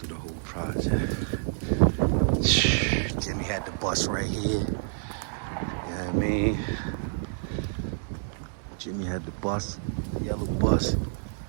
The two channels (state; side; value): silent; left; digital silence